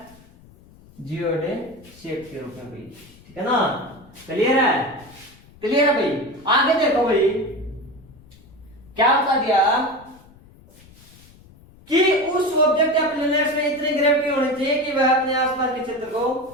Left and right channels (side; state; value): left; noise; rumble, 25 dB below the sound